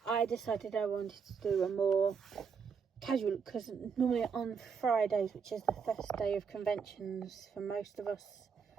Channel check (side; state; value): left; quieter; 6.1 dB